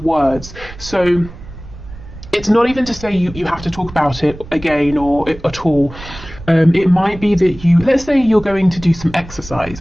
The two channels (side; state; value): right; noise; rumble, 16 dB below the sound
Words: So it's not even to say you have to talk about it again or at all. It might be that let's say you're going to do some exercise